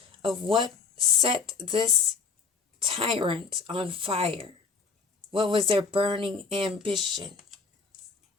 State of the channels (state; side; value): quieter; right; 4.8 dB